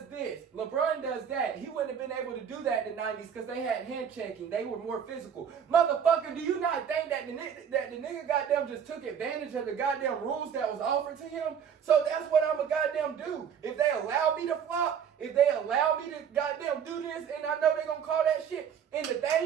this. LeBron does that. He wouldn't have been able to do that in the 90s because they had hand checking. They were more physical. Motherfucker, do you not think that the nigga goddamn just took advantage of the goddamn rules that was offered to him? So that's what I'm a goddamn do. If they allow me to flop, if they allow me to goddamn do this, and I know they gonna call that shit. And the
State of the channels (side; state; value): left; quieter; 7.8 dB